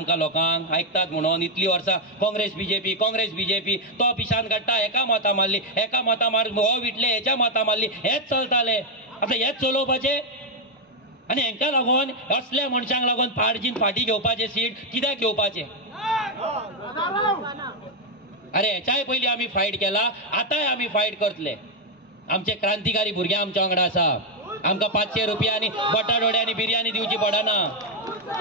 लोकांक, आयकतात म्हणून इतली वर्सां काँग्रेस बीजेपी तो पिशान काडटा, एका मतां मारली, एका मतां मार, हो विटले हेच्या मतां मारली, हेच चलताले. आतां हेच चलोवपाचे आनी हेंका लागून असल्या मनशांक लागून फाडजीन फाटी घेवपाचे सीट कित्याक घेवपाचे? अरे हेच्याय पयलीं आमी फायट केला, आतांय आमी फायट करतले. आमचे क्रांतिकारी भुरगे आमच्या वांगडा आसा, आमकां 500 रुपया आनी बटाटवडे आनी बिर्याणी दिवची पडना,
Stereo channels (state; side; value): normal; both; correlation 0.01